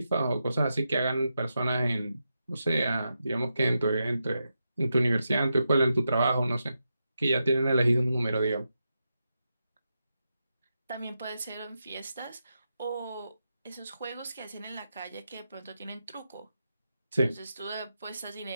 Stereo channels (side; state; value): both; inverted; correlation -0.87